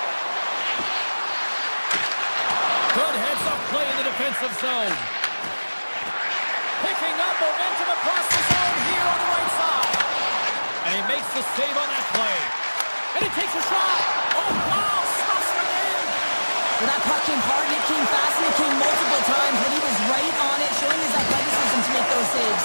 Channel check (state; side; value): inverted; both; correlation -1.00